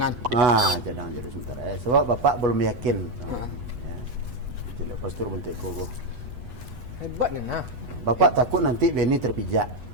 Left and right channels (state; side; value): late; left; 8.2 ms